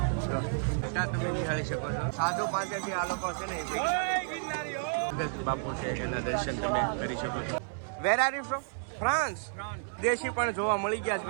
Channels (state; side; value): silent; left; 57 dB below the other